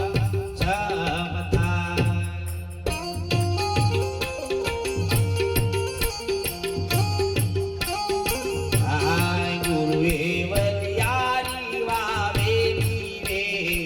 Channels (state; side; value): identical; both; correlation 1.00